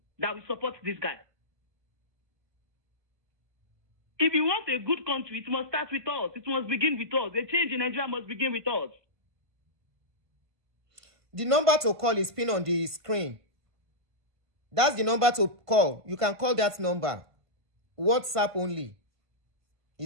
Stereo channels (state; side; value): late; left; 1.5 ms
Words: that will support this guy. If you want a good country, it must start with us. It must begin with us. A change in Nigeria must begin with us. The number to call is pinned on the screen. That's the number to call. You can call that number. WhatsApp only